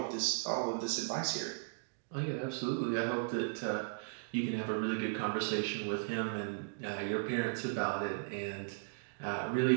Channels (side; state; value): left; silent; digital silence